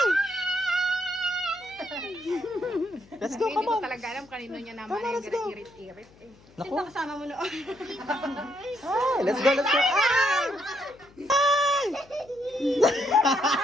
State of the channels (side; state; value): left; noise; hum, 27 dB below the sound